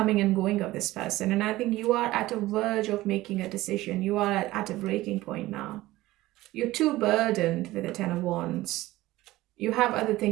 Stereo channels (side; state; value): left; quieter; 17.5 dB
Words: and going of this person, and I think you are at a verge of making a decision. You are at a breaking point now. You're too burdened with the Ten of Wands. You have other